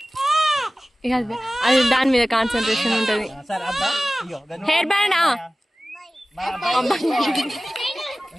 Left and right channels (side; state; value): both; normal; correlation 0.97